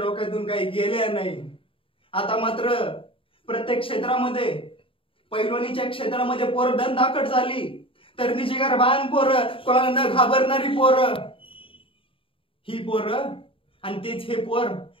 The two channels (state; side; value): late; right; 0.26 ms